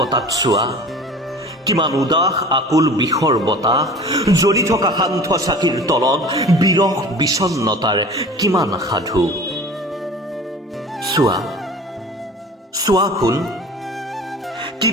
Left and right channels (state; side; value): normal; both; correlation 0.41